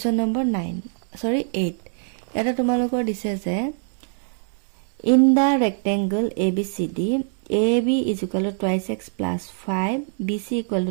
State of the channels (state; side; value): silent; left; 63 dB below the other